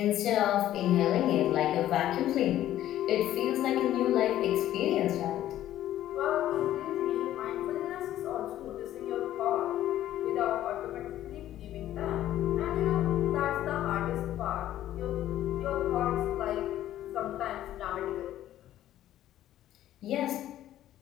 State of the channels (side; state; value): right; quieter; 12.9 dB